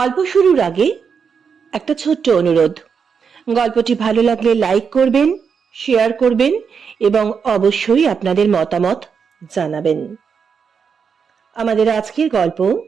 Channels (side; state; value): left; quieter; 6.3 dB